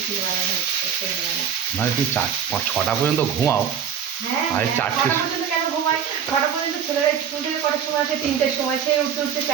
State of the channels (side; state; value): left; quieter; 8.2 dB